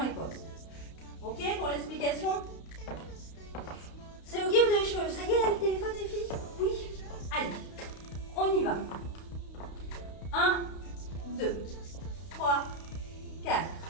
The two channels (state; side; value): late; right; 32 ms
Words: Ok pour l'explication? C'est ok, vous avez chaud. Ça y est, là, le téléphone, les filles? Oui? Allez, on y va. 1, 2, 3, 4.